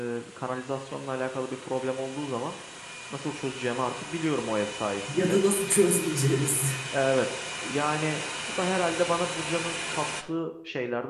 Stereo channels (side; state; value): both; identical; correlation 1.00